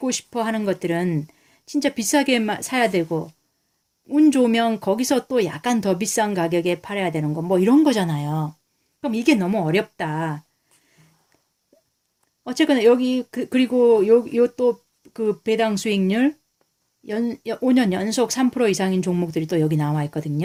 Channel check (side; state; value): both; identical; correlation 1.00